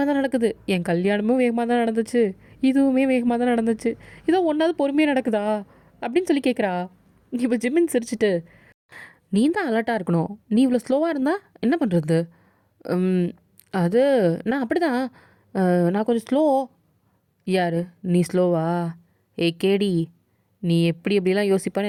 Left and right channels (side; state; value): both; identical; correlation 1.00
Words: தான் நடக்குது. என் கல்யாணமும் வேகமாக தான் நடந்துச்சு, இதுவுமே வேகமாக தான் நடந்துச்சு. இதோ ஒன்றாவது பொறுமையாக நடக்குதா அப்படின்னு சொல்லி கேட்குறா. இப்போ ஜிம்மின் சிரிச்சிட்டு, நீ தான் அலர்ட்டாக இருக்கணும், நீ இவ்வளோ ஸ்லோவாக இருந்தால் என்ன பண்ணுறது? அது நான் அப்படி தான், நான் கொஞ்சம் ஸ்லோ. யார் நீ ஸ்லோவா? கேடி, நீ எப்படி எப்படிலாம் யோசிப்பான்னு